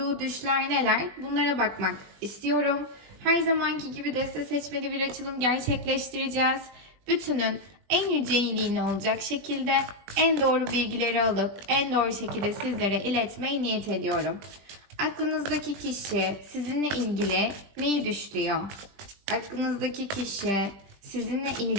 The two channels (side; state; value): left; late; 20 ms